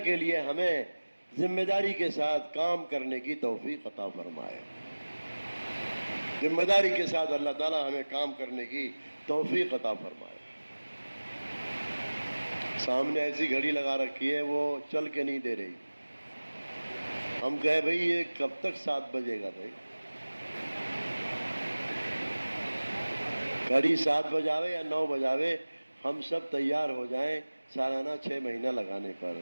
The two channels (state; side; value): inverted; both; correlation -1.00